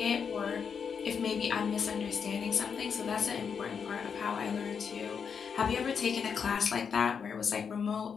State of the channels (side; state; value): right; quieter; 6.5 dB